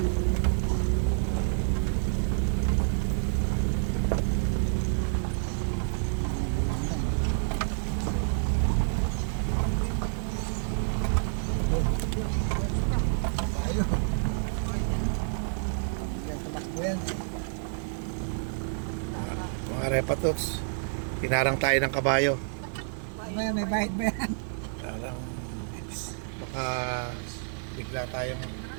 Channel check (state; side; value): silent; left; digital silence